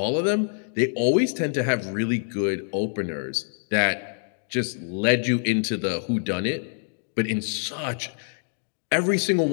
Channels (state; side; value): silent; right; 61 dB below the other